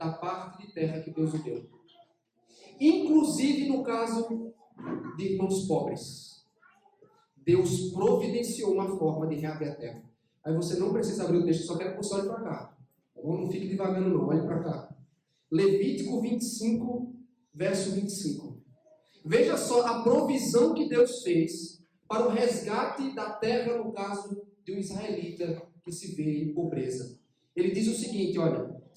parte de terra que Deus o deu. Inclusive no caso de irmãos pobres. Deus providenciou uma forma de reaver a terra. Aí você não precisa abrir o texto, só quero que você olhe para cá. Não fique devagando não, olhe para cá. Levítico 25, verso 25. Veja só a provisão que Deus fez para o resgate da terra, no caso de um israelita que se vê em pobreza. Ele diz o seguinte: olha,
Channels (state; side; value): identical; both; correlation 1.00